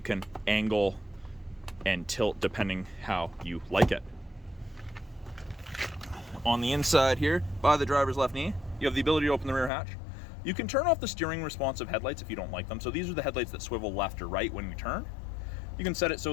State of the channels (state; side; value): drops out; right; at 9.7 s